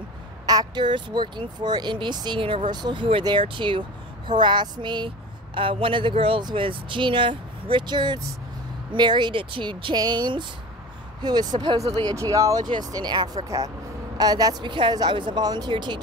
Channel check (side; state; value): both; normal; correlation 0.35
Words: actors working for NBC Universal who were there to harass me. One of the girls was Gina Richards, married to James, who is supposedly a geologist in Africa. That's because I was a volunteer